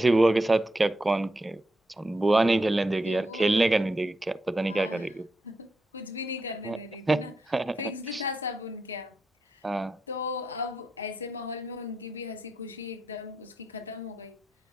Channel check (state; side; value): normal; both; correlation 0.85